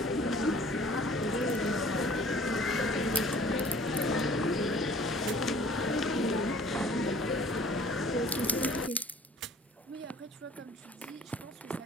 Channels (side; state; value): both; normal; correlation 0.51